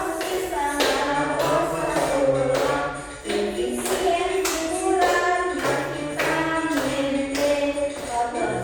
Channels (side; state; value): both; identical; correlation 1.00